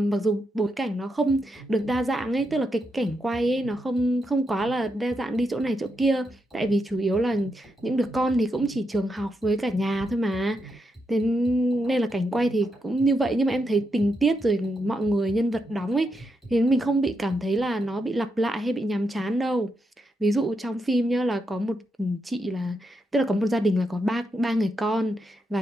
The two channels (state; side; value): normal; both; correlation 0.83